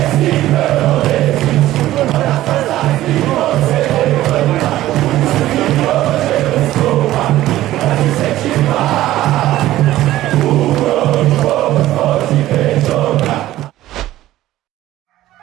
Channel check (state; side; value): quieter; left; 14.8 dB